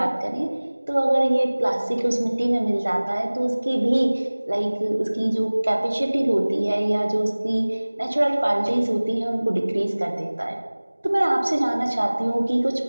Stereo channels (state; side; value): inverted; both; correlation -1.00